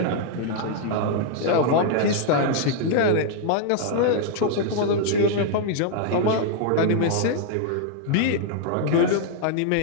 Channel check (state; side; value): different; both; correlation 0.00